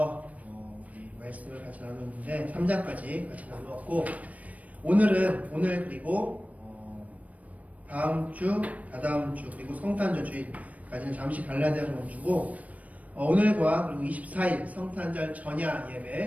우리 말씀을 같이 나눴는데 3장까지 같이 나누었고, 오늘 그리고 다음 주, 다다음 주, 그리고 성탄절 주일까지는 잠시 갈라디아를 멈추고, 오늘과 그리고 24일 성탄절 전야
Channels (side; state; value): left; late; 0.069 ms